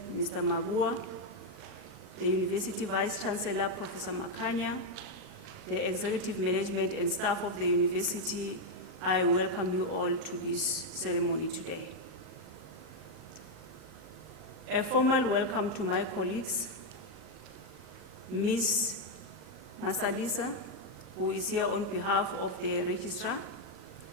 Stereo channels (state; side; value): late; left; 38 ms